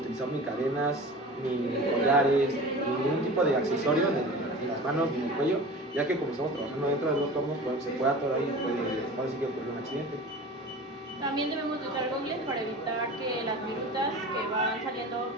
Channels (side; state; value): both; normal; correlation 0.36